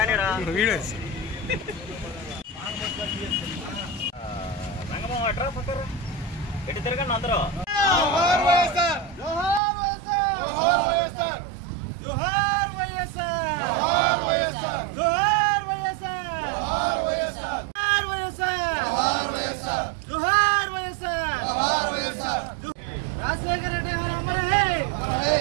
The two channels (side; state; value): left; drops out; at 9.6 s